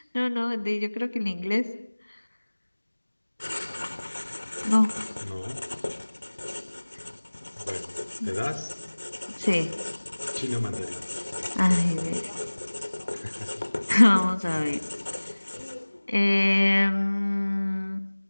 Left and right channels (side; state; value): both; inverted; correlation -1.00